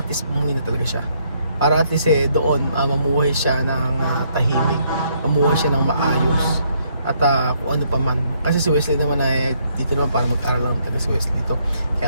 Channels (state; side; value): inverted; both; correlation -0.71